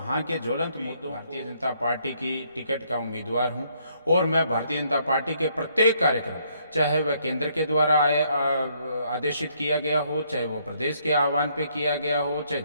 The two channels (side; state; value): both; inverted; correlation -0.70